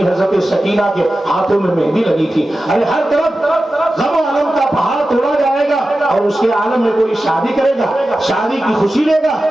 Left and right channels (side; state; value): both; normal; correlation 0.94